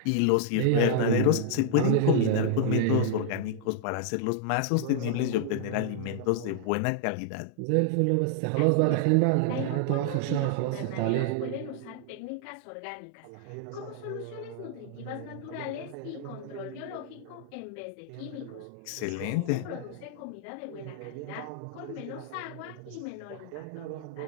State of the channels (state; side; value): different; both; correlation -0.01